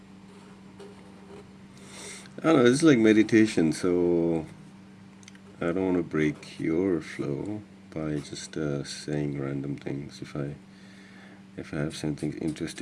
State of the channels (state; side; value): identical; both; correlation 1.00